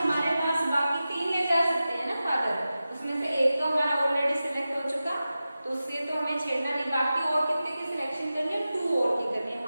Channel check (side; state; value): both; inverted; correlation -0.94